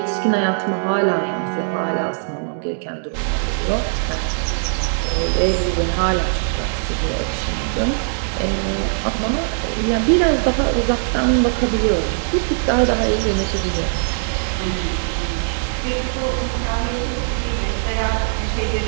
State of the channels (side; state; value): left; silent; digital silence